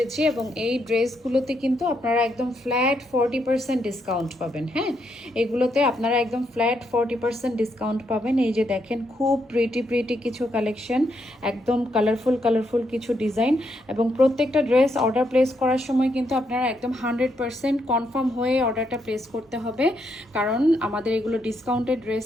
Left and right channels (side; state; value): both; normal; correlation 0.78